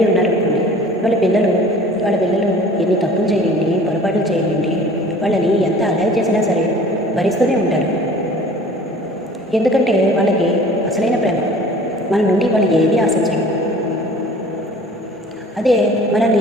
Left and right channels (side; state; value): both; normal; correlation 0.47